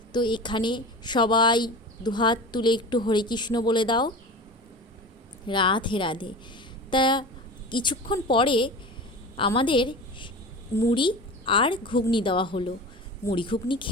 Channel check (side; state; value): both; normal; correlation 0.32